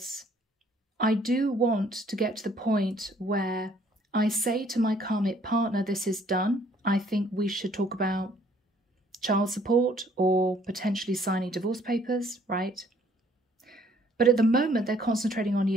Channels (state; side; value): normal; both; correlation 0.61